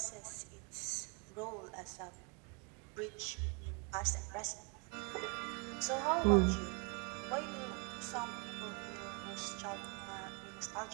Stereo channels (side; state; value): left; quieter; 33.4 dB